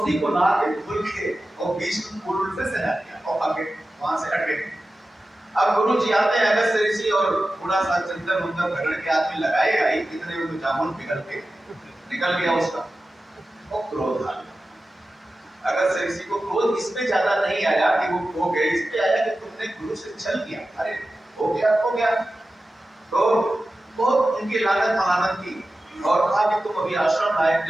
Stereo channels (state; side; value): normal; both; correlation 0.94